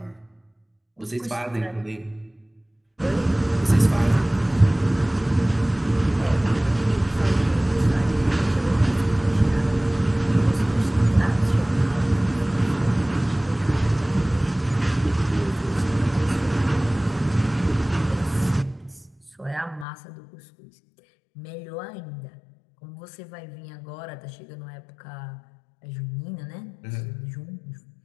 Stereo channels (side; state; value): right; drops out; at 19.9 s